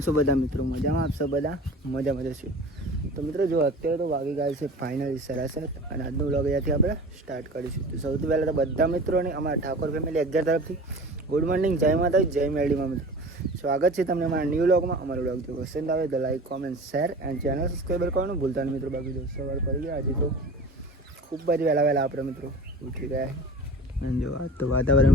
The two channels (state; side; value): normal; both; correlation 0.38